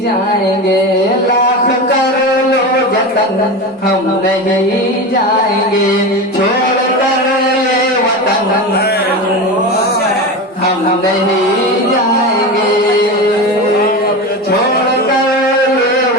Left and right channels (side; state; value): both; normal; correlation 0.23